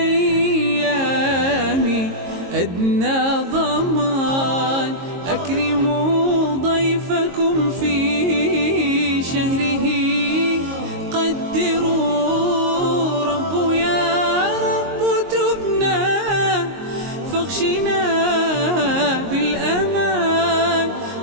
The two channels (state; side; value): late; left; 22 ms